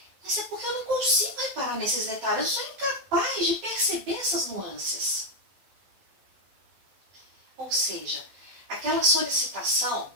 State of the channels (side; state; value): left; late; 12 ms